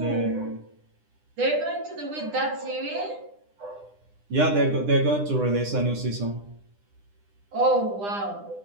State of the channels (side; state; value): left; late; 9.9 ms